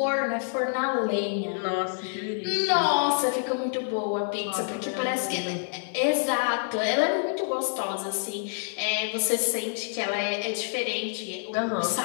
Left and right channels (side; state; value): right; silent; 60 dB below the other